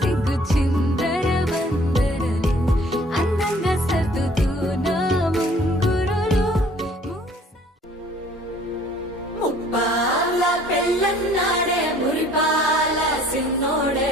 చిందర వందరలు అందంగా సర్దుతూ నా ముంగురులు ముప్పాల పెళ్ళన్నాడే మురిపాల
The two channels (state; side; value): normal; both; correlation 0.56